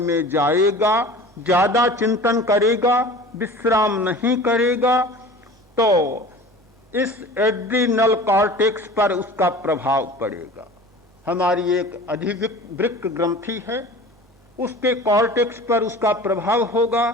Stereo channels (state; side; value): normal; both; correlation 0.40